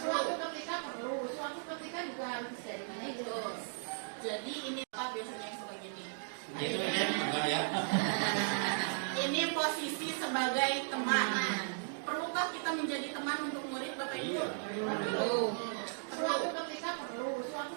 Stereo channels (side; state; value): left; silent; digital silence